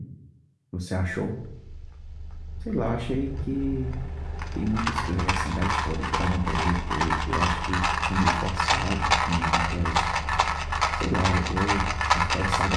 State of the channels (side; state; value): both; identical; correlation 1.00